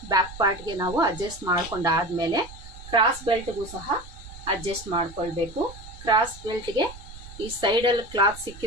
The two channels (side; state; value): right; noise; rumble, 16 dB below the sound